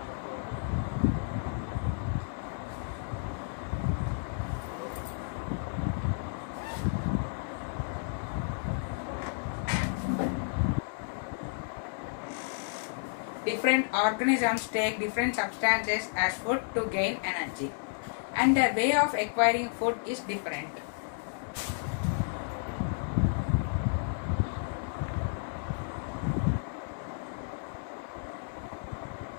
Different organisms take different substances as food to gain energy, and the way of acquiring food is different.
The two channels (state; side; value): silent; right; digital silence